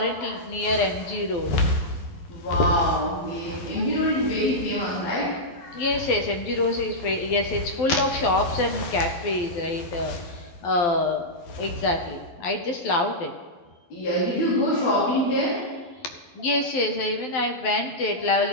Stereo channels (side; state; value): right; late; 12 ms